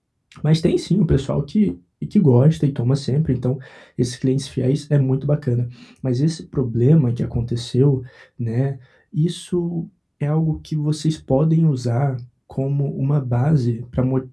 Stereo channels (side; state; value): both; identical; correlation 1.00